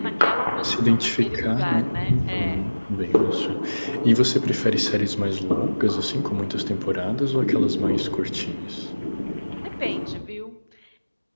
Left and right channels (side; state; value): both; inverted; correlation -1.00